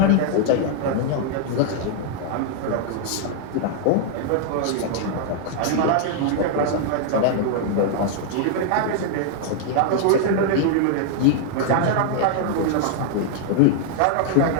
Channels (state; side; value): different; both; correlation -0.01